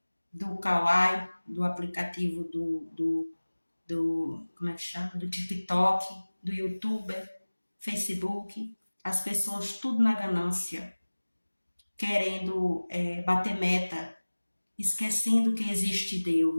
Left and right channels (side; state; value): both; inverted; correlation -1.00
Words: do Kawaii, do aplicativo como é que chama? Do TikTok, do YouTube, Facebook. As pessoas tudo na ganância, querendo bater meta, esquecendo que existe